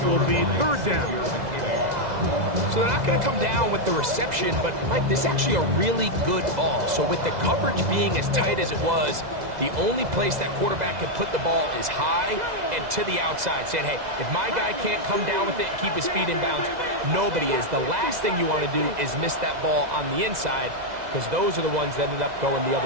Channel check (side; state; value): left; late; 2.0 ms